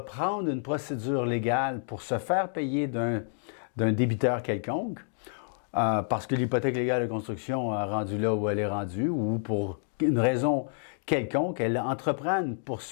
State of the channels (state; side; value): silent; right; digital silence